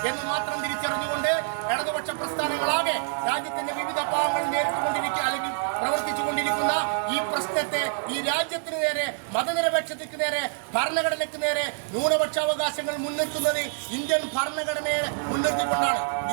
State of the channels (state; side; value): silent; left; digital silence